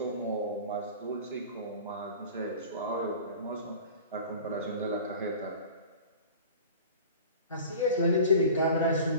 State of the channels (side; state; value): both; inverted; correlation -0.39